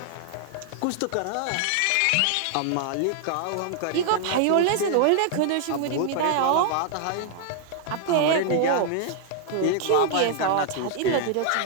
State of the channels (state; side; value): different; both; correlation 0.00